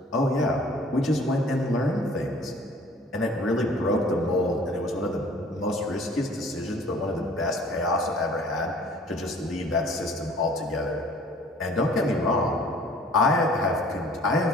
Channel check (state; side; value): normal; both; correlation 0.51